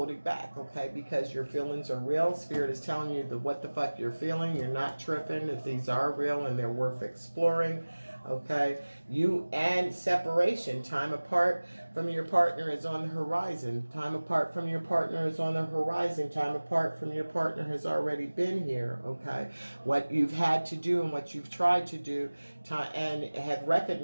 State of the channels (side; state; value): both; inverted; correlation -1.00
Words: back, okay? Because your feelings are real. Spirit is telling you what the fuck you're feeling. You're not tripping. If these are real and they're worth exploring, okay? And separation. Time apart from your partner is on the horizon. Time apart from your partner is on the horizon. Time apart from your partner has already been here, okay? What you've had to do and what you've tried to do, and have